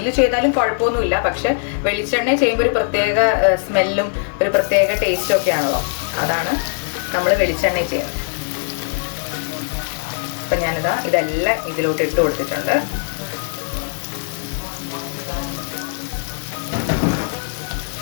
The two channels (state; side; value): silent; right; 66 dB below the other